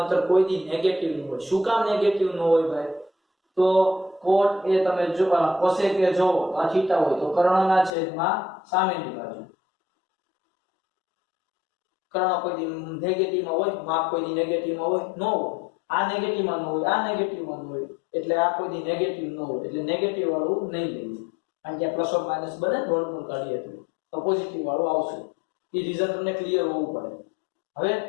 કોઈ દી નેગેટિવ ન હોય. શું કામ નેગેટિવ ન હોય ભાઈ? તો cot એ તમે જો cosec એ જો આ થીટા હોય તો કર્ણના છેદમાં સામેની બાજુ. કર્ણ કોઈ દી નેગેટિવમાં હોય, માપ કોઈ દી નેગેટિવમાં હોય ન હોય. આ નેગેટિવમાં ન હોય, આ નેગેટિવમાં ન હોય. એટલે આ કોઈ દી નેગેટિવ ન હોય. એટલે નેગેટિવ વાળું નહીં લઈએ. કારણ કે પ્લસ ઓર માઈનસ બને વર્ગમૂળ કાઢીએ તો પોઝિટિવ વાળું આવશે. એ રીઝન તમને ક્લિયર હોવું પડે. હવે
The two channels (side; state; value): right; drops out; at 7.9 s